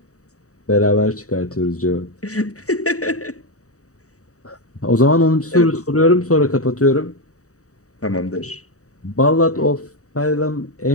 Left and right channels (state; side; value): late; right; 0.66 ms